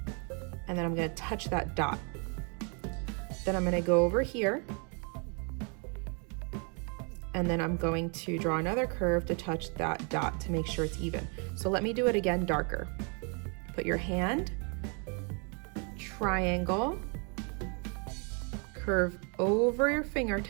And then I'm going to touch that dot. Then I'm going to go over here, and then I'm going to draw another curve to touch that dot to make sure it's even. So let me do it again darker. Put your hand, triangle, curve over your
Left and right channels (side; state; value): left; quieter; 36.6 dB